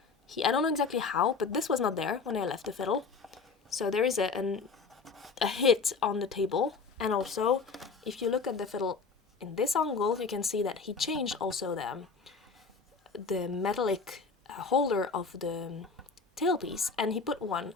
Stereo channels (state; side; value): quieter; right; 4.8 dB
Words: I don't know exactly how, but this was not there when I left the fiddle. So there is a hit on the table. And also, if you look at the fiddle in this angle, you can see that he changed also the metallic holder of the tailpiece, and he put one